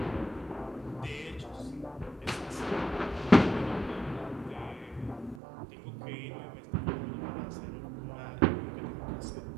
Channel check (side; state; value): left; drops out; at 5.4 s